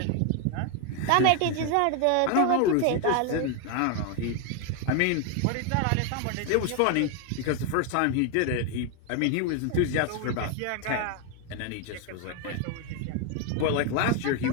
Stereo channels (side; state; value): both; different; correlation 0.01